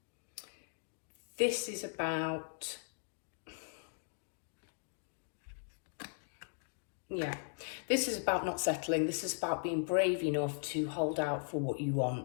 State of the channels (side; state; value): right; silent; digital silence